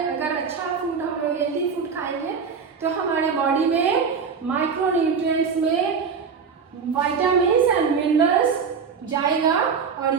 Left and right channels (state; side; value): quieter; left; 5.9 dB